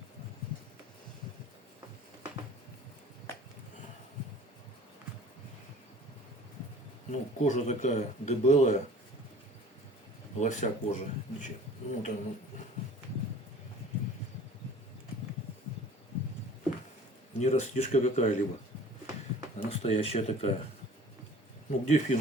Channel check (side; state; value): both; normal; correlation 0.47